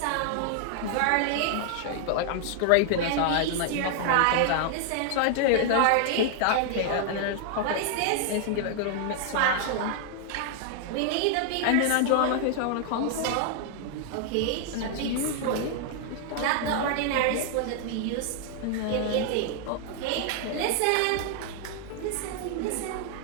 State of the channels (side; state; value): both; different; correlation 0.00